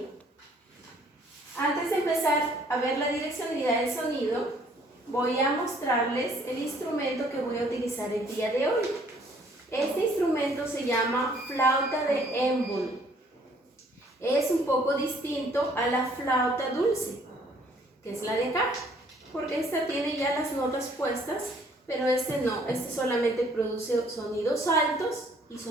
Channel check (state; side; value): normal; both; correlation 0.61